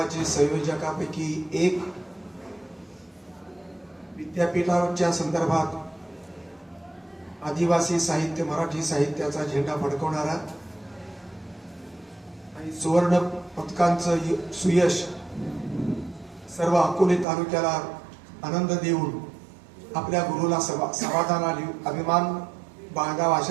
संयोजकापैकी एक, विद्यापीठाच्या संदर्भात आदिवासी साहित्य, मराठी साहित्याचा झेंडा फडकवणारा आणि सुवर्ण पदकांचं सुयश सर्व अकोले तालुक्याला आनंद देऊन आपल्या गुरुला समाधान आणि अभिमान बाळगावा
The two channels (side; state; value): left; drops out; at 17.2 s